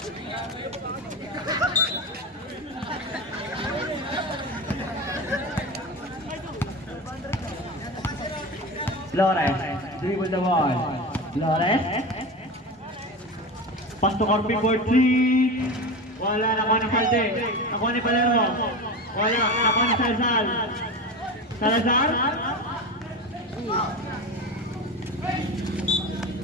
Flores, dribble the ball. Flores. Pass to Corpin for 3. Wala, nakuha ni Salte. Nakuha ni Palermo. Wala, nakuha ni Salazar.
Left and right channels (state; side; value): normal; both; correlation 0.25